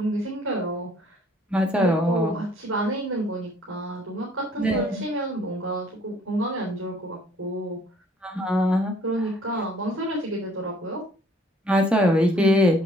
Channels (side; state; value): both; normal; correlation 0.59